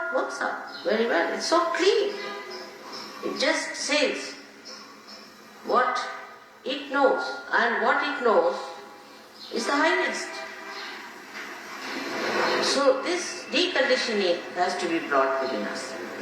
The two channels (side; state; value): both; identical; correlation 1.00